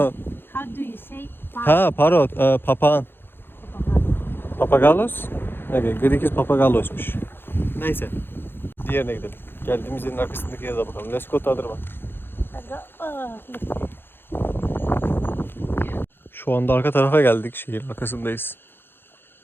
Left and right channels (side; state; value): right; late; 0.10 ms